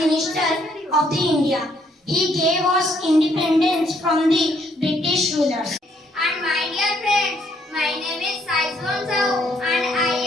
of the India. He gave us independence from the British rulers. And my dear friends, my name is Saizwan Sao and I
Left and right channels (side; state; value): both; normal; correlation 0.69